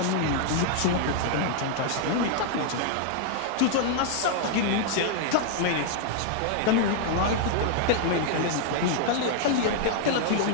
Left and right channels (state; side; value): different; both; correlation 0.00